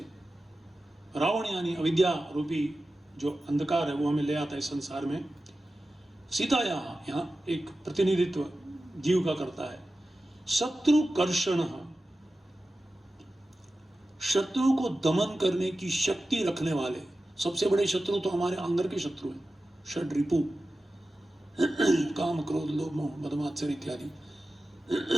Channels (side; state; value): both; normal; correlation 0.94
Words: रावण यानी अविद्या रूपी जो अंधकार है वो हमें ले आता है इस संसार में। सीताया यहाँ एक प्रतिनिधित्व जीव का करता है। शत्रु कर्षण, शत्रु को दमन करने की शक्ति रखने वाले। सबसे बड़े शत्रु तो हमारे अंदर के शत्रु हैं, षड रिपु, काम क्रोध लोभ मोह मद मात्सर्य इत्यादि।